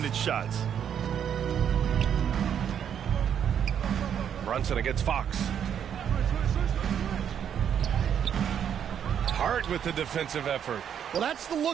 shots. Brunson against Fox. Hart with the defensive effort. Well, that's the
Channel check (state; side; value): quieter; left; 8.8 dB